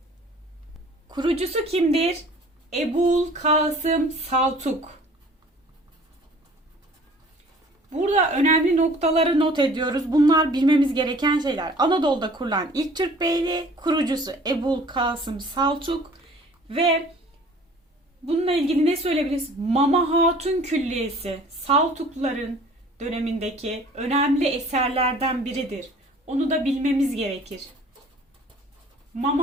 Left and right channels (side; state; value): both; normal; correlation 0.50